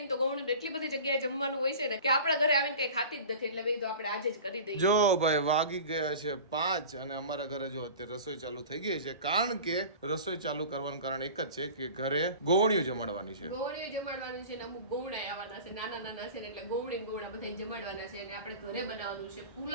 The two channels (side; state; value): both; inverted; correlation -0.38